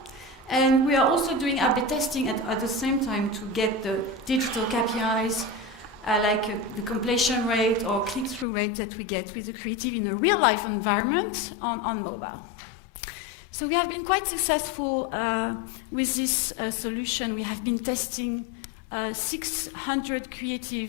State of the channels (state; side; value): drops out; right; at 8.5 s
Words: and we are also doing A/B testing at the same time to get the digital KPIs like the completion rate or click-through rate that we get with the creative in a real-life environment on mobile. So we have been quite successful with this solution. We have been testing 600